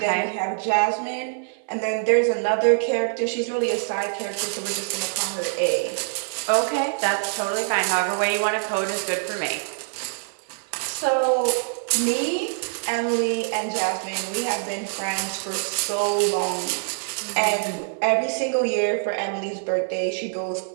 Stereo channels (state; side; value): silent; left; 60 dB below the other